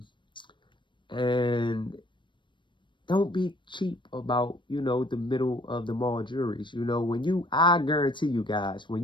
and don't be cheap about, you know, the middle of the mall jewelries. You know, I guarantee you guys, when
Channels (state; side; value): late; right; 0.23 ms